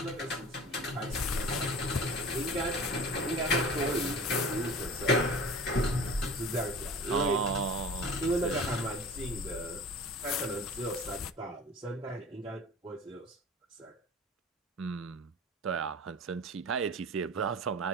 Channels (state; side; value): normal; both; correlation 0.39